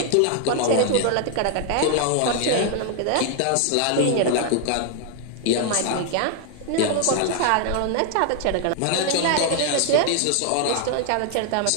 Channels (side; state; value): both; different; correlation 0.00